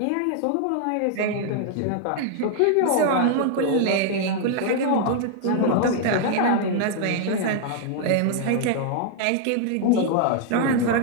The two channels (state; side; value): different; both; correlation 0.00